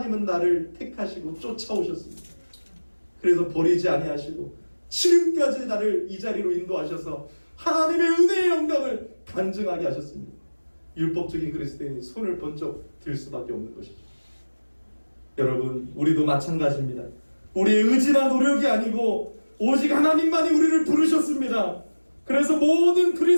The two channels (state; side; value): inverted; both; correlation -1.00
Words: 나를 택하시고 쫓아오셨습니다. 그래서 버리지 아니하시고 지금까지 나를 이 자리로 인도하셔서 하나님의 은혜의 영광을 간증하게 하셨습니다. 율법적인 그리스도인이 손을 번쩍 들 수밖에 없는 것이죠. 여러분, 우리도 마찬가지입니다. 우리의 의지나 노력이 아니고 오직 하나님만이 우리를 부르셨습니다. 그래서 모든